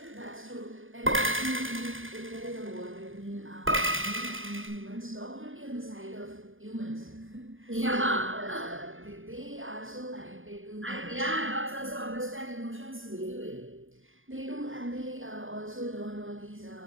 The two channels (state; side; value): late; left; 0.59 ms